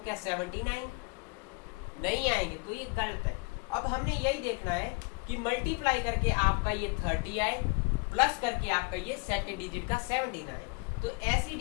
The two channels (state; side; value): quieter; right; 30.1 dB